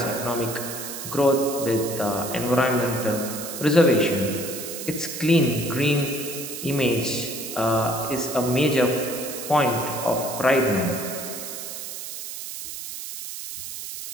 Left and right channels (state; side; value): noise; right; hiss, 8 dB below the sound